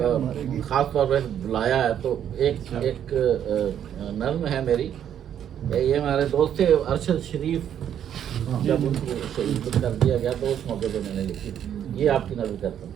खास तौर पर बुलाया है, तो एक नर्म है मेरी। ये हमारे दोस्त थे अरशद शरीफ, जब उनको शहीद कर दिया गया तो उस मौके पे मैंने लिखी। ये आपकी नजर करता हूँ।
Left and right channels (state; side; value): quieter; left; 9.7 dB